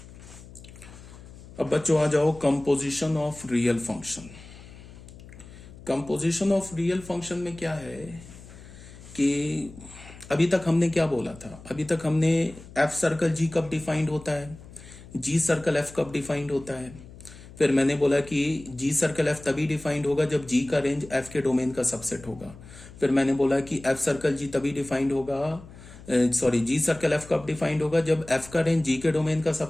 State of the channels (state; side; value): noise; left; hum, 18 dB below the sound